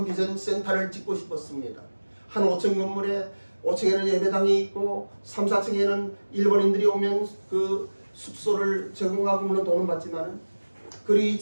비전 센터를 짓고 싶었습니다. 한 5층 건물에 5층에는 예배당이 있고 3, 4층에는 일본인들이 오면 그 숙소를 제공하고 물론 돈은 받지만, 그리고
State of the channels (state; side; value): inverted; both; correlation -1.00